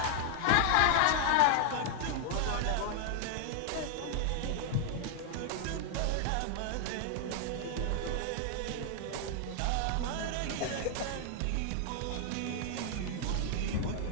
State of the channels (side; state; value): both; different; correlation 0.00